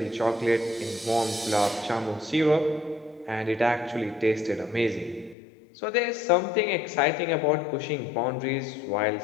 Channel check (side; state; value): right; drops out; at 5.4 s